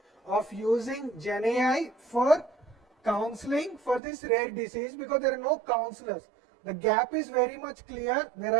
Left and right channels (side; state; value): left; drops out; at 4.0 s